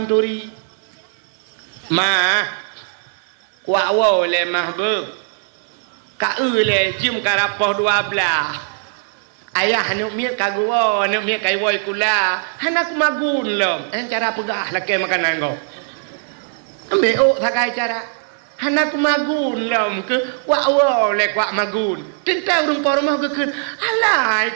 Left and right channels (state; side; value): silent; left; 59 dB below the other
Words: turi mah kuat wo le mah be ka le jim karapoh 12 ayah anu miat kagua anu miat kai woi kula hanak magun lom cara pegah laki makanan go ambil sakai cara hanak magun lom ke wa le kwa magun tentang rumah rumah ke alai